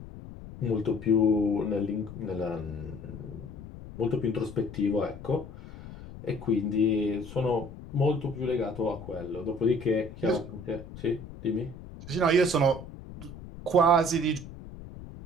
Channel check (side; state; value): left; noise; rumble, 14 dB below the sound